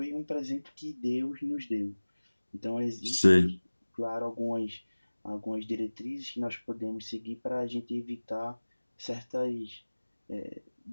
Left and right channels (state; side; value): inverted; both; correlation -1.00